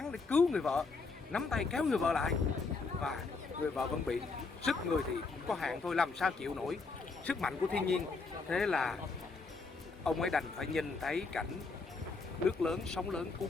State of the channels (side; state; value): right; quieter; 4.2 dB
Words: để cứu người vợ, nắm tay kéo người vợ lại, và người vợ vẫn bị sức người thì có hạn thôi, làm sao chịu nổi sức mạnh của thiên nhiên. Thế là ông ấy đành phải nhìn thấy cảnh nước lớn, sóng lớn